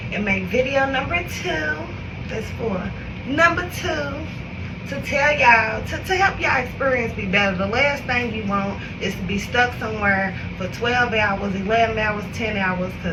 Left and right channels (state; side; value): identical; both; correlation 1.00